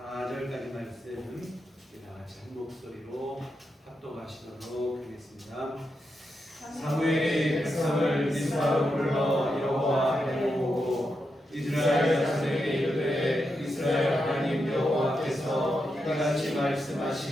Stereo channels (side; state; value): both; normal; correlation 0.86